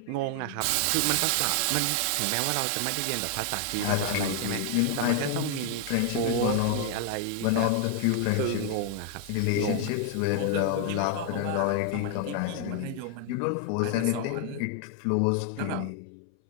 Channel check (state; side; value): different; both; correlation 0.00